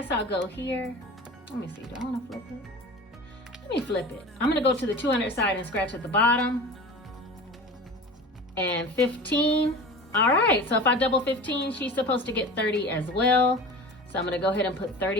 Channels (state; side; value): normal; both; correlation 0.35